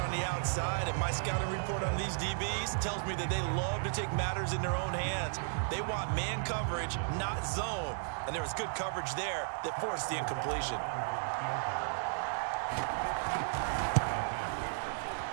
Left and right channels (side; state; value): left; silent; digital silence